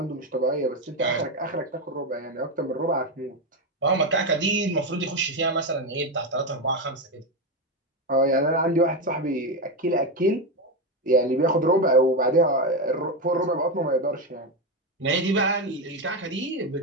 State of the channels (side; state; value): both; normal; correlation 0.11